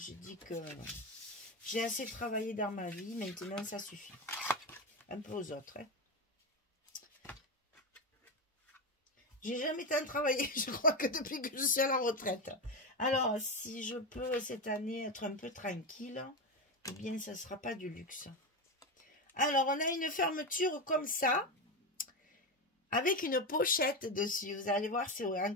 dis que j'ai assez travaillé dans ma vie, maintenant ça suffit. Un peu aux autres, hein. J'ai jamais tant travaillé, je crois que depuis que je suis à la retraite. Alors, si je peux cette année être un peu tranquille, eh bien, ça ne sera pas du luxe. Alors, on a une fermeture comme ça, avec une pochette dessus. Vous allez voir, c'est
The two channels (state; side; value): normal; both; correlation 0.15